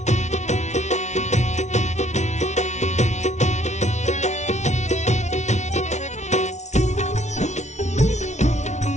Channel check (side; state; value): right; late; 0.33 ms